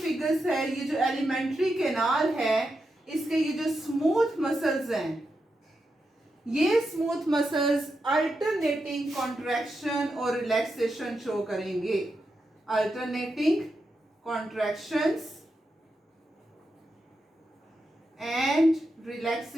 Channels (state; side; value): normal; both; correlation 0.87